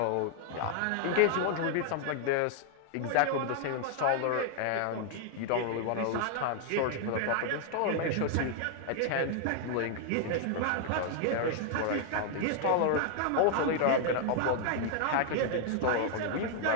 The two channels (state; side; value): different; both; correlation 0.00